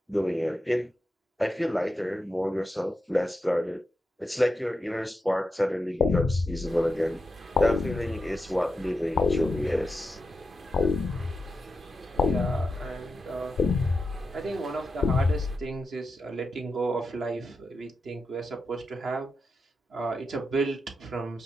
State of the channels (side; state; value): both; normal; correlation 0.88